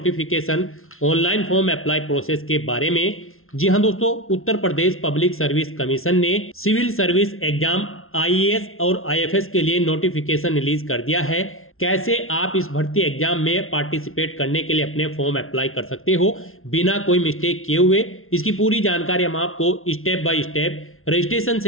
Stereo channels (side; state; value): right; late; 0.61 ms